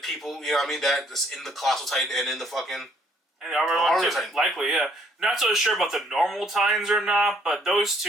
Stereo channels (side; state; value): both; normal; correlation 0.65